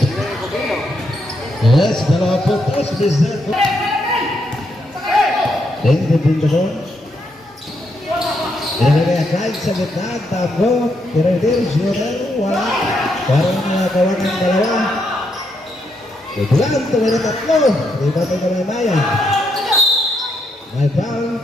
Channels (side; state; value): both; normal; correlation 0.78